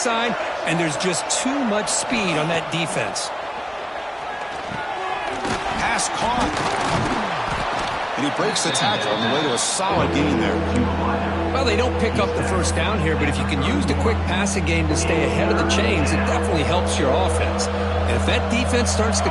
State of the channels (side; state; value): both; identical; correlation 1.00